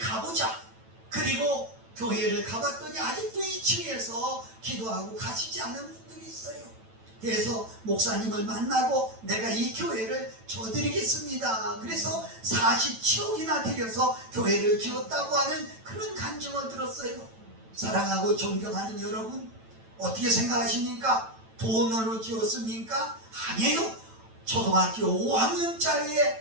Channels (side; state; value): left; late; 9.0 ms